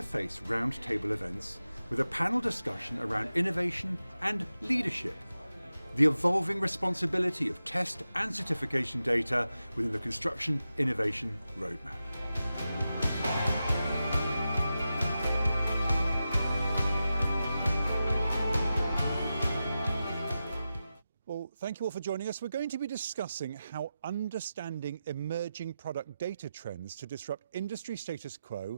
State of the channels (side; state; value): both; inverted; correlation -0.92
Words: roundtable events with a panel discussion around innovation and leadership, the evolving responsibility of test and certification data within the construction innovation roadmap. Well, thank you all for joining us. We're going to be discussing how understanding emerging product data trends to disrupt industry status